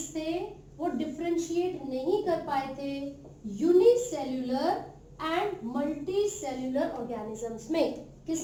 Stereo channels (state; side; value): identical; both; correlation 1.00